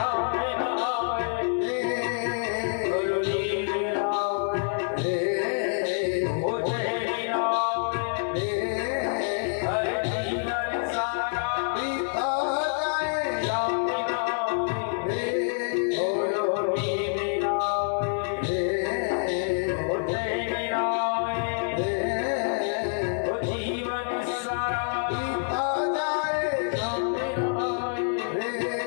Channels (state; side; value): silent; right; digital silence